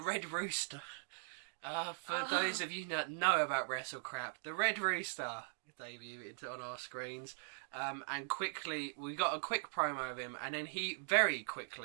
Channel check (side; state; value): left; silent; digital silence